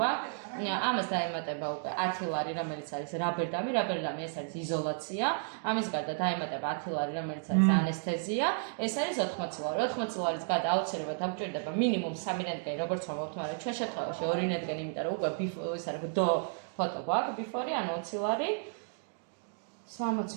ამას დაემატება უკვე 10 ლარი, რომელიც არის რაბერდამი ეს არის იზოლაცია. ამის გარდა დაემატება 10 ლარი, რომელიც არის ანესთეზია. ეს არის 80 ლარი. 80 ლარის გარდა აუცილებლად დაგჭირდება მინიმუმ 3 რენტგენი, როგორც ვამბობთ, მაგრამ ჩვენ შემთხვევაში 2 რენტგენი, იმიტომ რომ უკვე ის არის დო ფოტო გვაქვს, ბიფორი, ანუ 20 ლარი.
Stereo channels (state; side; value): silent; left; digital silence